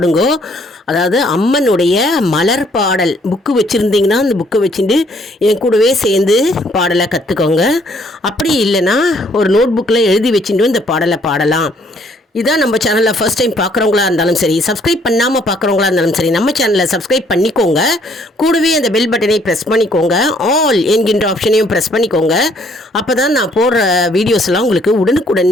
அதாவது அம்மனுடைய மலர் பாடல் புக்கு வச்சுருந்தீங்கன்னா அந்த புக்கை வச்சுட்டு என் கூடவே சேர்ந்து பாடலை கற்றுக்கோங்க. அப்படி இல்லைன்னா ஒரு நோட் புக்கில் எழுதி வச்சுட்டு இந்த பாடலை பாடலாம். இதான் நம்ம சேனலில் ஃபர்ஸ்ட் டைம் பார்க்குறவங்களா இருந்தாலும் சரி, சப்ஸ்கிரைப் பண்ணாமல் பார்க்குறவங்களா இருந்தாலும் சரி, நம்ம சேனலை சப்ஸ்கிரைப் பண்ணிக்கோங்க. கூடவே அந்த பெல் பட்டனை ப்ரெஸ் பண்ணிக்கோங்க. ஆல் என்கின்ற ஆப்ஷனையும் ப்ரெஸ் பண்ணிக்கோங்க. அப்போ தான் நான் போடுற வீடியோஸ்லாம் உங்களுக்கு உடனுக்குடன்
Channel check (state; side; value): normal; both; correlation 0.64